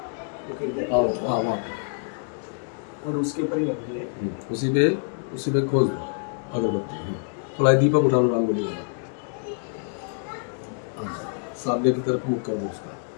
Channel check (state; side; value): silent; right; 57 dB below the other